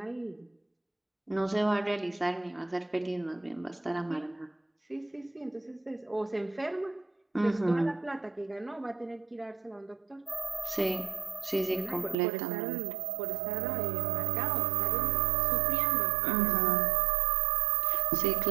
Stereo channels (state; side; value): drops out; left; at 12.2 s